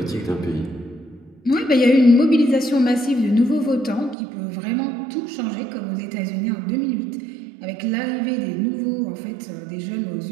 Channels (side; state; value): left; drops out; at 4.2 s